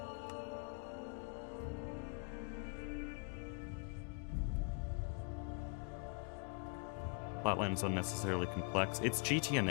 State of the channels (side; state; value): right; quieter; 36.9 dB